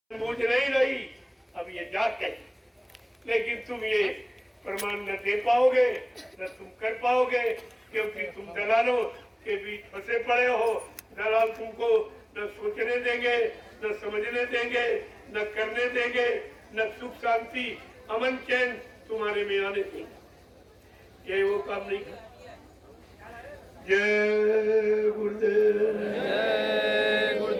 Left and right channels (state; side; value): identical; both; correlation 1.00